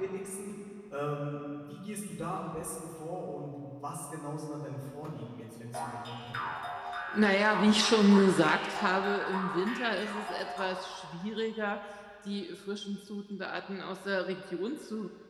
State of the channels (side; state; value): both; identical; correlation 1.00